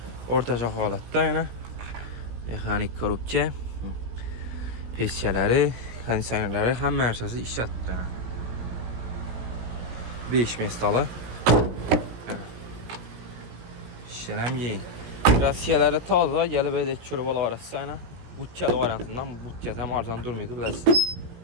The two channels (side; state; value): left; late; 17 ms